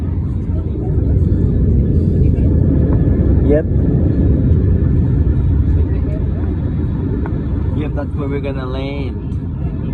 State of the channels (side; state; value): both; identical; correlation 1.00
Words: Yep. Yep, that's where we're gonna land.